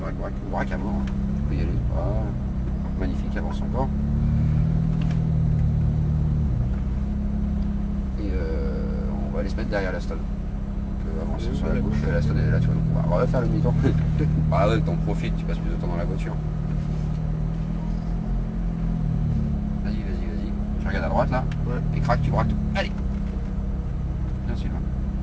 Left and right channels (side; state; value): both; identical; correlation 1.00